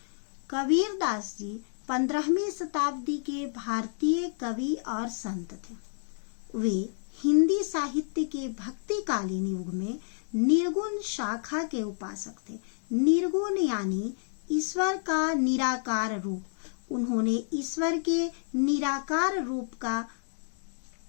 कबीर दास जी 15वीं शताब्दी के भारतीय कवि और संत थे। वे हिंदी साहित्य के भक्तिकालीन युग में निर्गुण शाखा के उपासक थे। निर्गुण यानी ईश्वर का निराकार रूप। उन्होंने ईश्वर के निराकार रूप का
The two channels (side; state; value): right; silent; digital silence